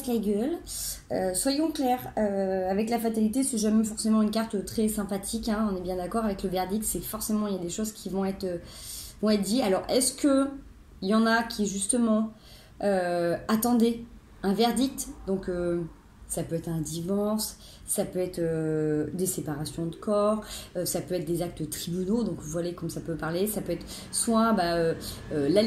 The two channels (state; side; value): identical; both; correlation 1.00